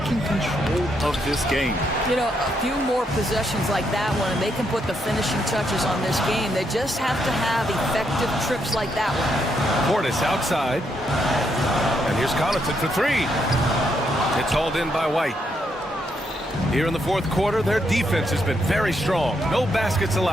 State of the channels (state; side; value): normal; both; correlation 0.77